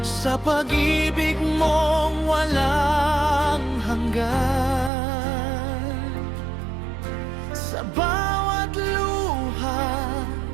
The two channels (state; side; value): drops out; left; at 4.9 s